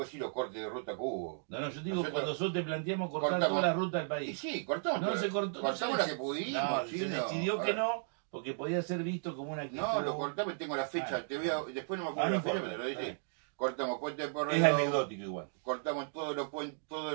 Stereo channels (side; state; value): left; silent; digital silence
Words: decir los cortes de ruta que hubo. No, yo digo, Nosotros cuando nosotros te planteamos cortar cortamos- toda la ruta del Y país. sí, cortamos. No se cortó. Cortamos la que pudimos. No, sí, se no. decidió A que ver, no, porque podía ser visto como una actitud. No, lo cortamos y tengo la fecha. Ah, después no me acuerdo no la fecha, importa, pero te lo está dice. bien. Cortamos Puente de Es Porredón, anecdótico igual. cortamos